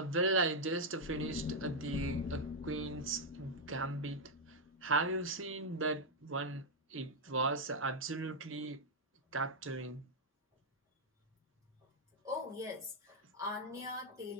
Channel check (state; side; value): normal; both; correlation -0.02